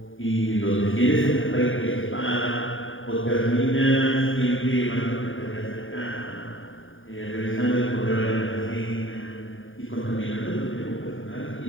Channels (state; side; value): late; right; 0.58 ms